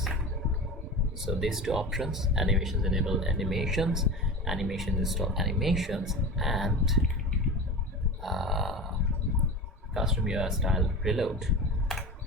So these two options, animations enable animations, animation install animations, and custom UI style reload.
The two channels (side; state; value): both; normal; correlation 0.30